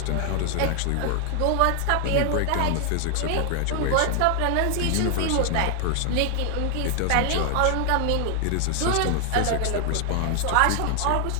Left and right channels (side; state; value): both; different; correlation 0.00